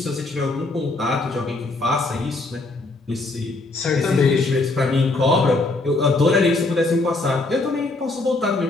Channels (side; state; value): right; quieter; 3.2 dB